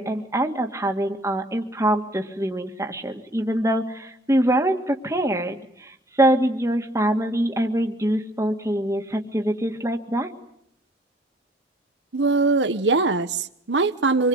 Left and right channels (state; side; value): normal; both; correlation 0.54